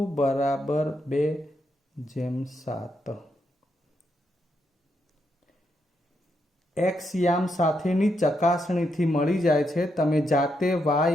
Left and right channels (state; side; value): normal; both; correlation 0.80